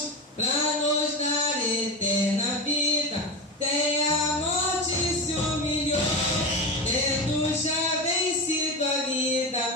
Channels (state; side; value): normal; both; correlation 0.20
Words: pra nos dar eterna vida. Tem a morte se humilhou, tendo já vencido a